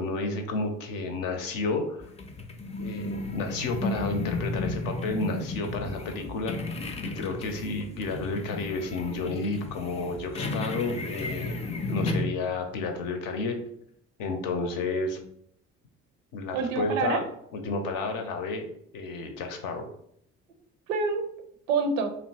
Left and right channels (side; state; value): both; normal; correlation 0.16